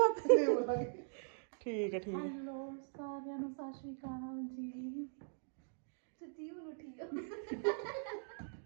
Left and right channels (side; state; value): left; silent; digital silence